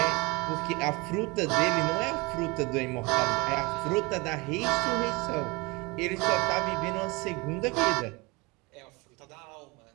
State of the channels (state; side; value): quieter; left; 25.4 dB